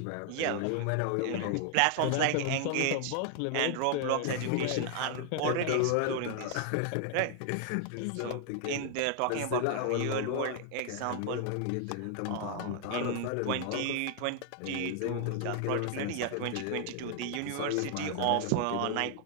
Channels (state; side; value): different; both; correlation 0.00